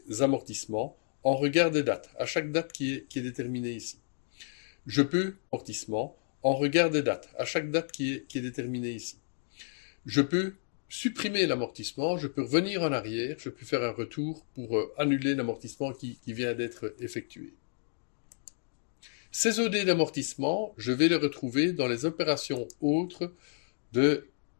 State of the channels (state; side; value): silent; right; digital silence